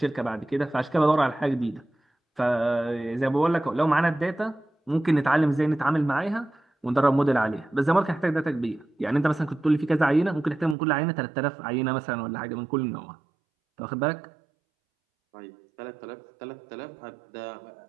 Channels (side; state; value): left; drops out; at 10.8 s